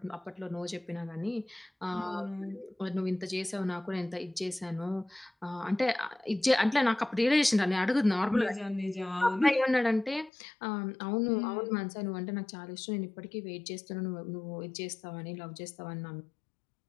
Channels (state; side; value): drops out; right; at 10.3 s